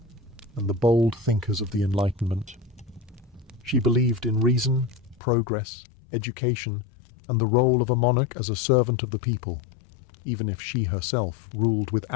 and the bold thinkers of the Enlightenment. She believed in reason, progress, education, and the role of a monarch as a servant of the people, even if she herself ruled with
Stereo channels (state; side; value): drops out; right; at 5.2 s